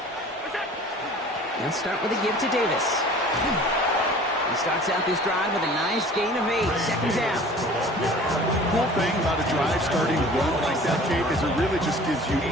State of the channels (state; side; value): normal; both; correlation 0.45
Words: Let's start with a give to Davis. He starts out this drive with a nice gain of 8. 2nd down. Cool thing about a drive starting a run like that, Kate, is it really just gives you